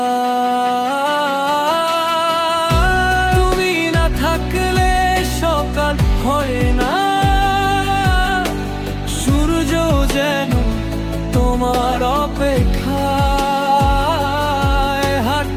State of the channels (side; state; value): both; identical; correlation 1.00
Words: তুমি না থাকলে সকাল হয় না, সূর্য যেন তোমার অপেক্ষায়।